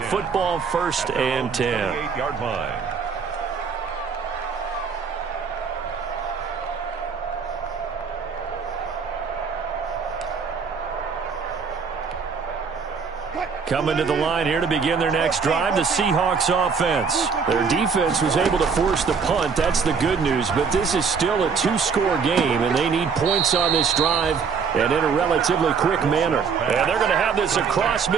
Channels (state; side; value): quieter; left; 5.8 dB